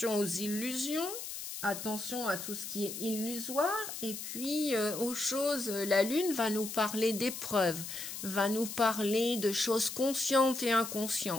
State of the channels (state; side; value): noise; left; hiss, 8 dB below the sound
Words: aux illusions, attention à tout ce qui est illusoire. Et puis aux choses, la Lune va nous parler d'épreuves, va nous parler de choses conscientes et